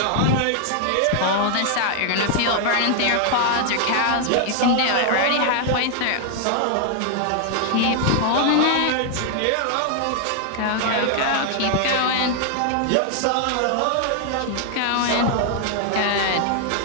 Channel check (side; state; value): both; different; correlation 0.00